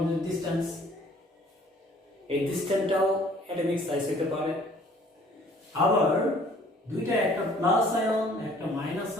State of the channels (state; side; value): normal; both; correlation 0.56